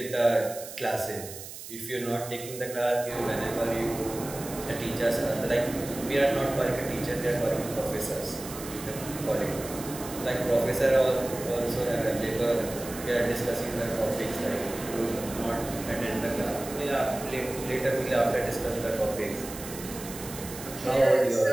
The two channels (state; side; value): noise; right; hiss, 12 dB below the sound